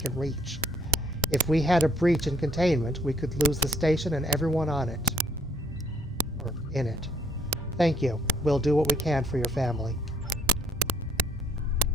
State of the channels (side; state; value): both; normal; correlation 0.65